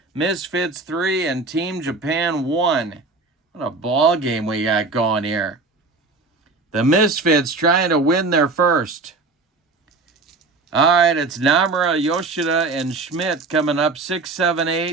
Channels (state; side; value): quieter; left; 3.7 dB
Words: Misfits 3 and Team Japan 1. What a ball game we got going here. The Misfits trying to win their first. All right, it's Namura, Yoshida, and Schmidt coming up 6, 7,